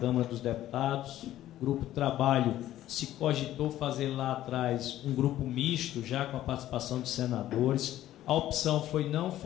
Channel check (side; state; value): right; quieter; 13.4 dB